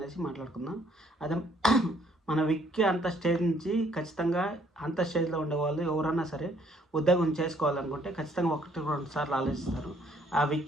మాట్లాడుకుందాం. అదే మన విక్కీ అంత స్టేజ్ నుంచి ఖచ్చితంగా అంత స్టేజ్లో ఉండేవాళ్ళు ఎవరన్నా సరే ఉద్యోగం చేసుకోవాలనుకుంటే ఖచ్చితంగా 1-2 సార్లు ఆలోచిస్తారు. ఆ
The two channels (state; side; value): normal; both; correlation 0.64